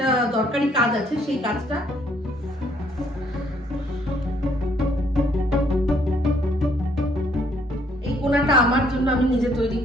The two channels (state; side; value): normal; both; correlation 0.67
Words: দরকারি কাজ আছে, সেই কাজটা। এই কোনাটা আমার জন্য আমি নিজে তৈরি